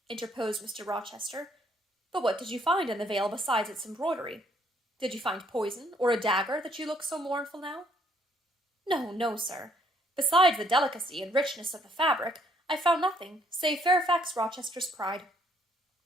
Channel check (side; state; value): both; normal; correlation 0.67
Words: interposed Mr. Rochester. But what did you find in the veil besides its embroidery? Did you find poison, or a dagger, that you look so mournful now? No, no, sir. Besides the delicacy and richness of the fabric, I found nothing, save Fairfax Rochester's pride.